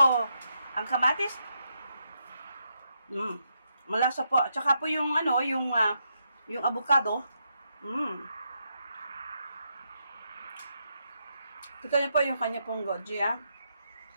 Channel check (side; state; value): both; inverted; correlation -0.81